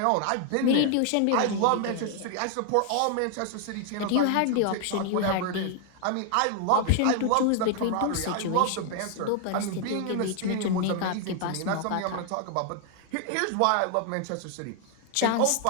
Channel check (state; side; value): different; both; correlation 0.00